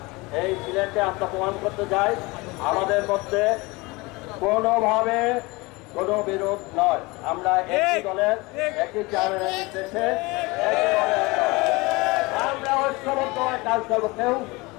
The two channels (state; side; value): quieter; right; 23.9 dB